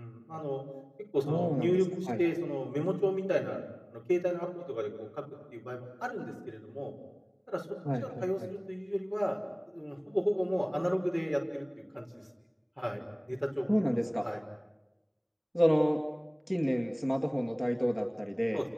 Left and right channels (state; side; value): identical; both; correlation 1.00